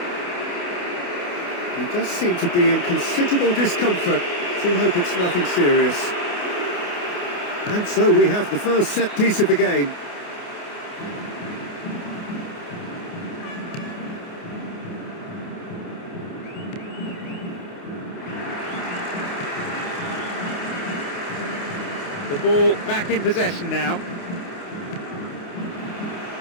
He does seem to be in considerable discomfort. Do hope it's nothing serious. And so we have the first set piece of the game. The ball back in possession now.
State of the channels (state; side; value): late; right; 28 ms